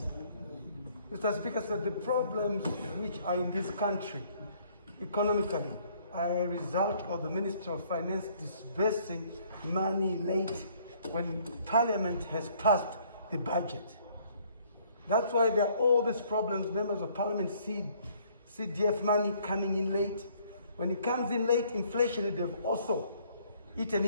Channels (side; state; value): both; inverted; correlation -0.62